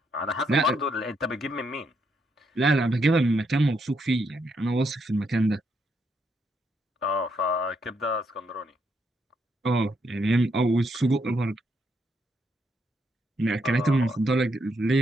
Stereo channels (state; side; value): normal; both; correlation 0.77